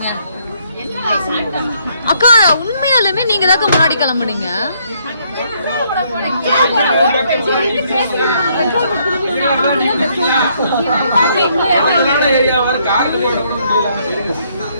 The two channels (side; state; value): both; inverted; correlation -0.70